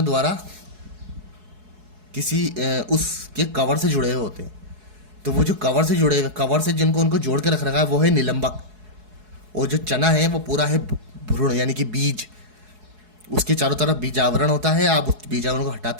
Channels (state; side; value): late; left; 4.7 ms